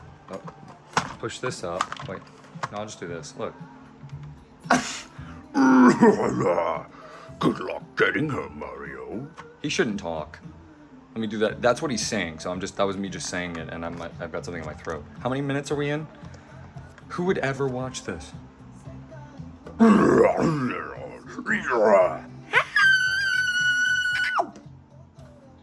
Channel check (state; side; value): identical; both; correlation 1.00